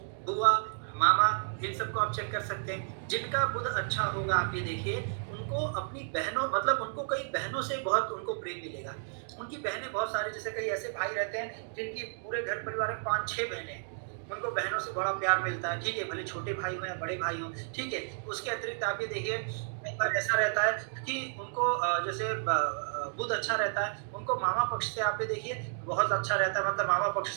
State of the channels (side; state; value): left; silent; digital silence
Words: बुआ, मामा, इन सबको आप चेक कर सकते हैं। जिनका बुध अच्छा होगा आप ये देखिए उनको अपनी बहनों, मतलब उनको कई बहनों से बहुत उनको प्रेम मिलेगा। उनकी बहनें बहुत सारे, जैसे कई ऐसे भाई रहते हैं जिनकी पूरे घर परिवार में 5-6 बहनें हैं, उनको बहनों से बड़ा प्यार मिलता है। ठीक है, भले छोटे भाई हो या बड़े भाई हो। ठीक है, उसके अतिरिक्त आप ये देखिए कई बार ऐसा रहता है कि उनको जैसे बुध अच्छा रहता है, उनको मामा पक्ष से आप ये देखिए बहुत अच्छा रहता है, मतलब मामा पक्ष